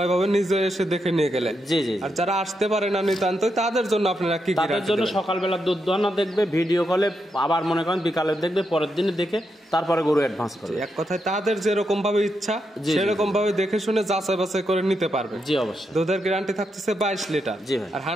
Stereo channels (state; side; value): normal; both; correlation 0.83